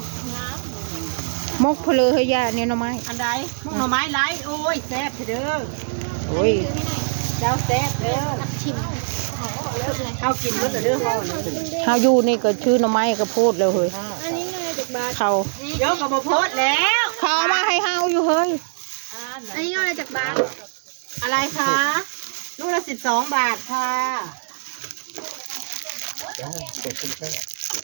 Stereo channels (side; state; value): left; silent; 64 dB below the other